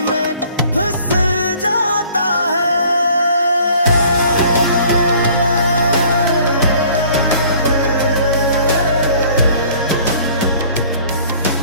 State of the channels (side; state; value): both; inverted; correlation -0.54